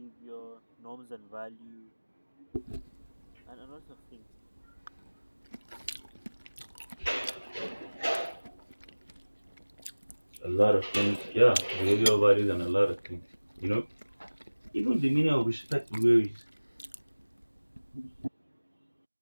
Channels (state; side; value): inverted; both; correlation -1.00